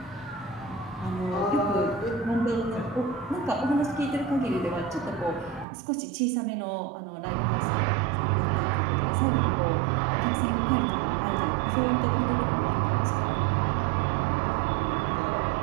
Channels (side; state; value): left; drops out; at 5.7 s